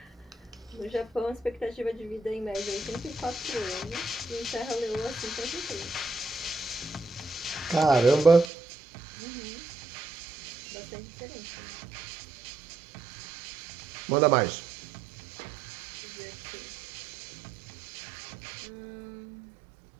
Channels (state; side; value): drops out; left; at 8.5 s